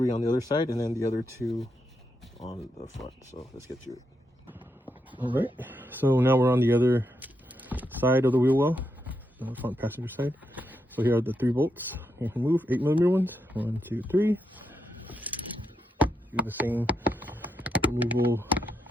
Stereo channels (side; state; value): both; normal; correlation 0.82